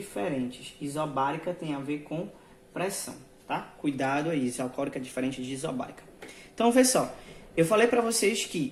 Isobárica tem a ver com pressão, tá? Cuidado aí, isocórica é diferente de isobárica. Então, vê só. Eu falei para vocês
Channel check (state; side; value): identical; both; correlation 1.00